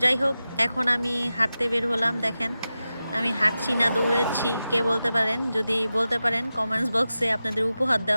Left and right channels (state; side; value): inverted; both; correlation -0.93